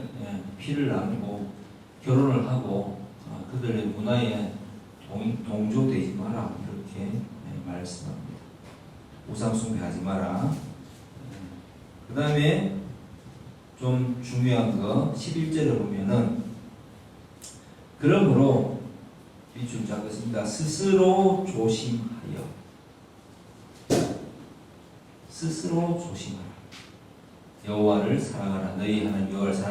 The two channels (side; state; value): both; identical; correlation 1.00